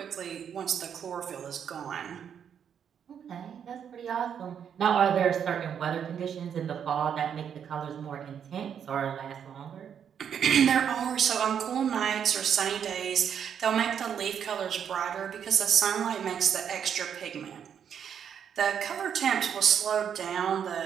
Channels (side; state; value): left; quieter; 8.2 dB